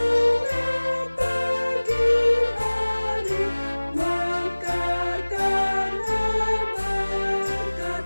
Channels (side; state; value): both; inverted; correlation -1.00